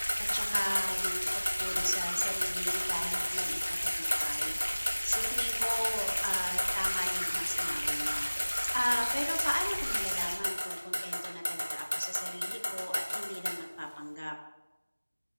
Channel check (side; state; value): both; inverted; correlation -1.00